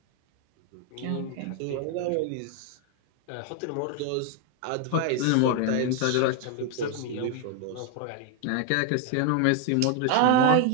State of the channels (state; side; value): different; both; correlation 0.01